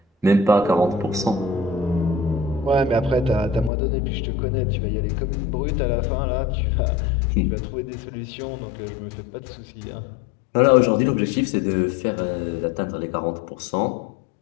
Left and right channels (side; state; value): right; drops out; at 3.7 s